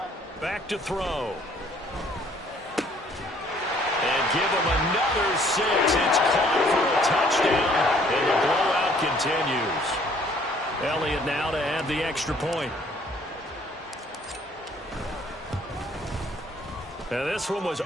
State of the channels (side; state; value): both; normal; correlation 0.60